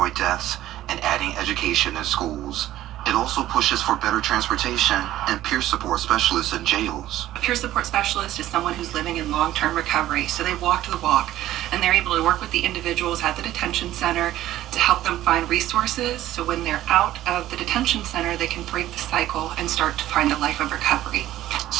deaths, and adding education in schools. It also pushes for better transportation and peer support specialists in jails. A peer support specialist is someone who's living in long-term recovery, so they walk the walk, and they're able to work with the individuals at the detention center to help them find resources, so when they're out of the detention center, they can break the cycle and start to find a life of recovery.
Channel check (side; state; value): left; quieter; 14.0 dB